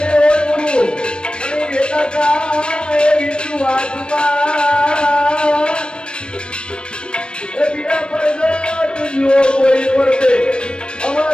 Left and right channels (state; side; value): late; right; 0.055 ms